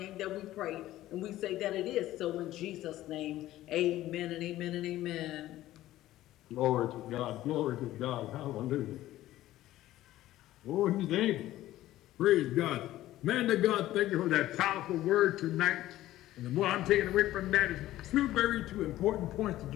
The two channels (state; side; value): quieter; right; 14.9 dB